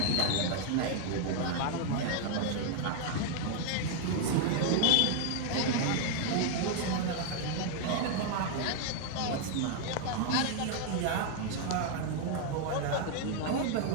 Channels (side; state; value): both; different; correlation 0.00